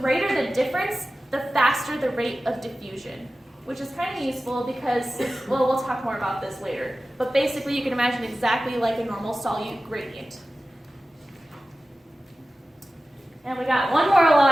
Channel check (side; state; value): both; normal; correlation 0.95